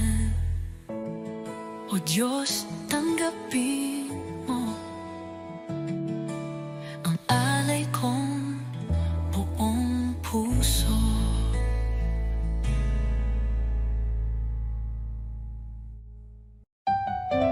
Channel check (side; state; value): both; identical; correlation 1.00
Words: O Diyos, tanggapin mo ang alay kong buong puso.